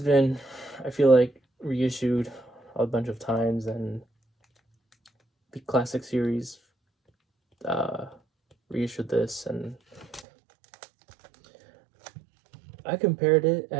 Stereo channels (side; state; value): left; drops out; at 10.2 s